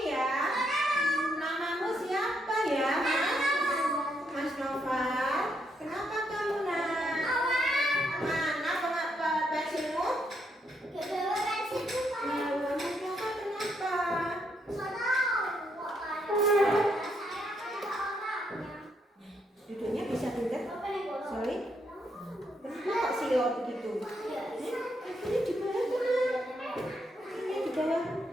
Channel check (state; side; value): normal; both; correlation 0.76